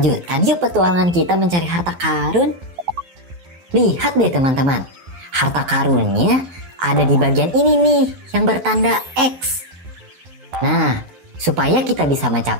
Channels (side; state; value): left; late; 12 ms